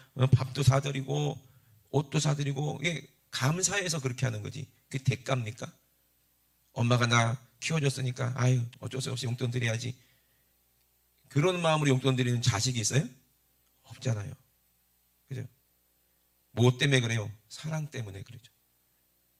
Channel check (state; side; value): identical; both; correlation 1.00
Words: 밥도 사드리고 옷도 사드리고 이게 감사해서 그렇게 하는 거지. 그게 대가입니까? 엄마가 나 키워줬으니까 아유 어쩔 수 없이 용돈 드려야지. 그런 마음으로 용돈 드리는 자식이 있어요? 없잖아요. 그죠? 뭐 때문에 그래요? 사랑 때문에 그러죠.